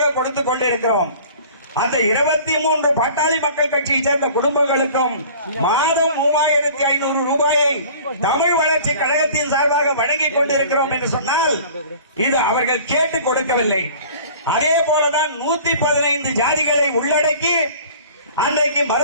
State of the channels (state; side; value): inverted; both; correlation -0.46